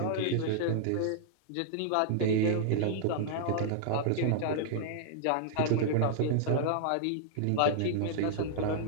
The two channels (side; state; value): both; different; correlation -0.01